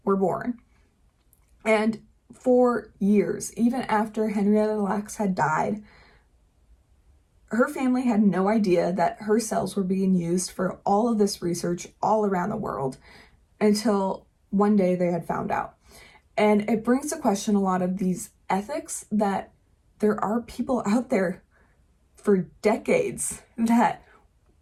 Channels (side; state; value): both; identical; correlation 1.00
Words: were born. And for years, even after Henrietta Lacks had died, her family had no idea that her cells were being used for all of this research all around the world until one day they had found out. And it brings to question a lot of these ethics that there are people out there for decades that